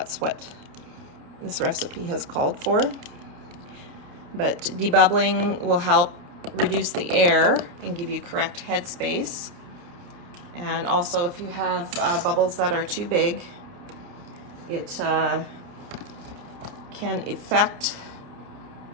what this recipe has called for. But debubbling will help reduce the air and give you correct headspace. And also, if you have bubbles that are too big, it can affect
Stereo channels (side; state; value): left; late; 29 ms